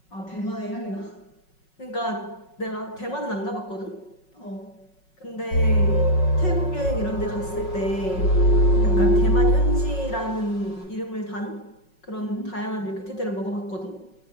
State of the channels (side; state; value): right; late; 5.4 ms